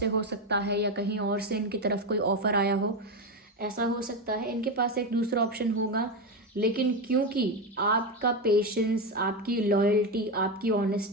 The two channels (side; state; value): both; normal; correlation 0.13